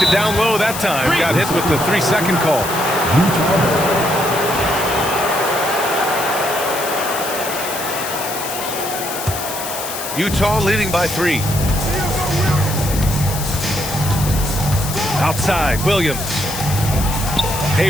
it down low that time. Got hit with the 3-second call. Utah leading by 3. Outside, Williams.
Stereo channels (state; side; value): noise; left; hiss, 7 dB below the sound